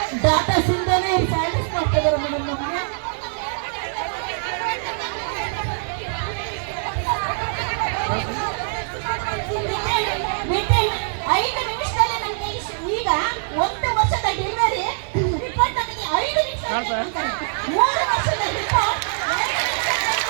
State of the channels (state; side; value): silent; left; digital silence